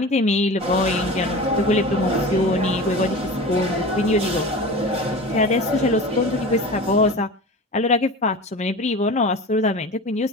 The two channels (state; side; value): normal; both; correlation 0.33